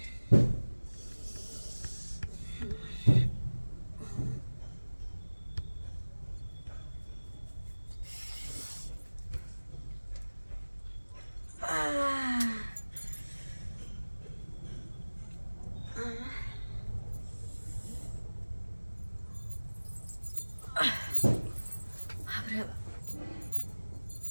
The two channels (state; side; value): inverted; both; correlation -1.00